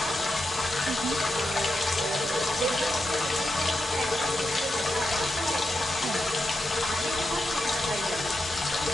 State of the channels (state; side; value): normal; both; correlation 0.87